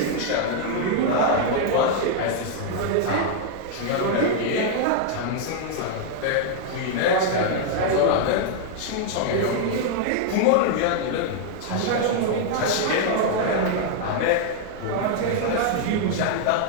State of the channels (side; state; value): both; different; correlation 0.00